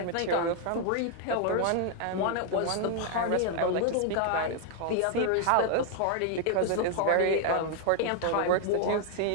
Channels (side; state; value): both; different; correlation 0.00